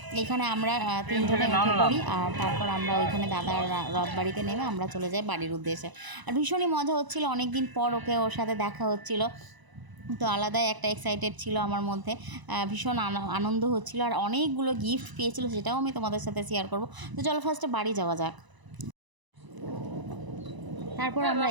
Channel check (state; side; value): late; left; 1.0 ms